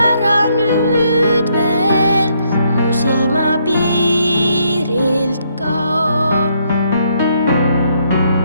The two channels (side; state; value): both; inverted; correlation -0.72